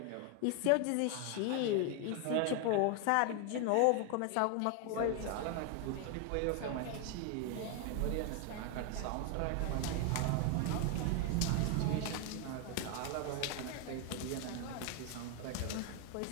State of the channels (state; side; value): different; both; correlation 0.00